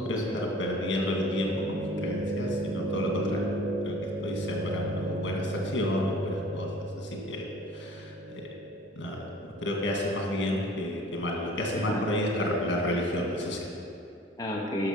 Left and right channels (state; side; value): normal; both; correlation 0.48